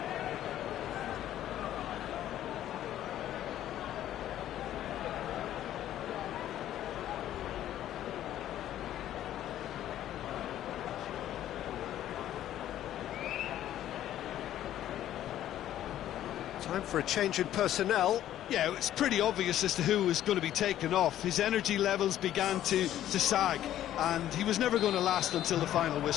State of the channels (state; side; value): quieter; right; 12.2 dB